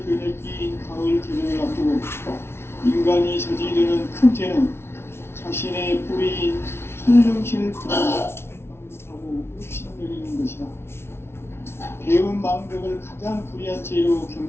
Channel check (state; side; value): late; right; 0.12 ms